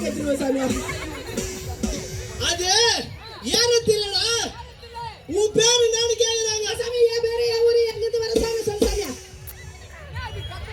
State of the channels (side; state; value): both; identical; correlation 1.00